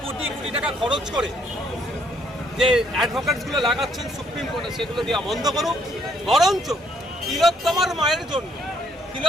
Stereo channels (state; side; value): normal; both; correlation 0.68